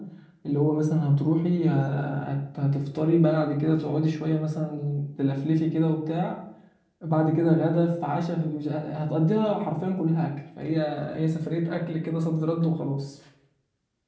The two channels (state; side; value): identical; both; correlation 1.00